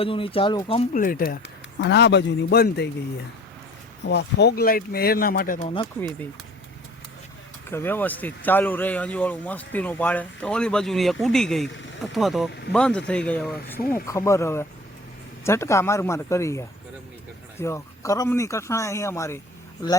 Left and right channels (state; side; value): normal; both; correlation 0.48